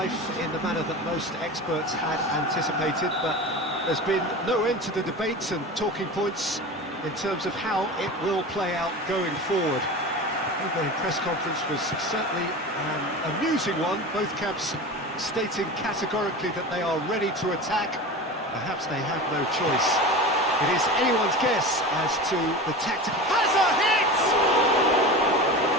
in the manner that most experts had anticipated, but there's been no end to the debates and talking points in terms of how it will play out going forward. The opening press conference was certainly an amusing one, both camps stating categorically that they are ready to attack. Perhaps they have no choice. It is anyone's guess as to the tactical... Has a hit!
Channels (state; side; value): normal; both; correlation 0.30